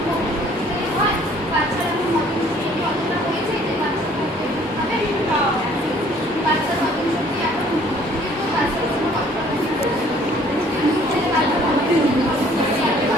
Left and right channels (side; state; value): both; normal; correlation 0.58